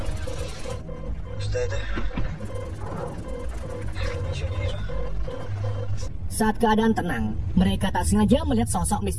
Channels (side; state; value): both; identical; correlation 1.00